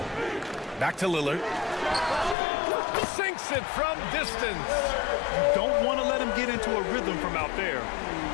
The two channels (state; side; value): drops out; right; at 2.4 s